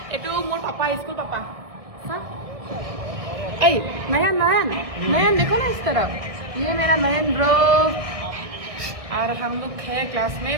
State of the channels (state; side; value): late; left; 1.5 ms